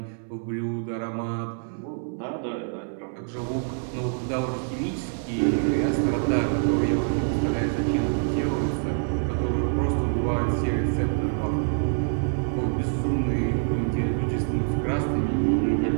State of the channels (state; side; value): silent; left; digital silence